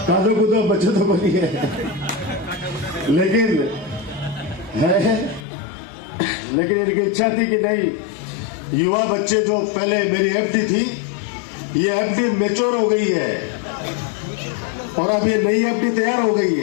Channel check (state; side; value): drops out; right; at 5.5 s